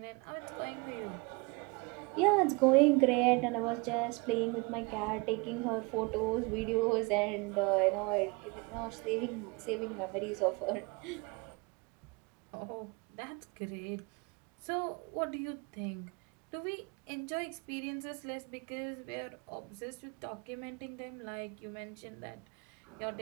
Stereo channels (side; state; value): left; quieter; 28.3 dB